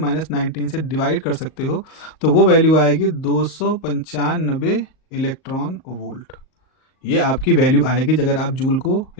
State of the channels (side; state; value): right; late; 38 ms